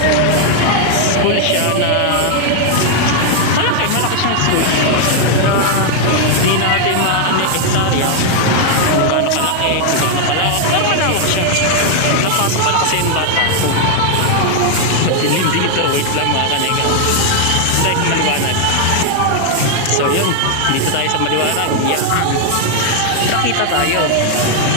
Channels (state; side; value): different; both; correlation 0.00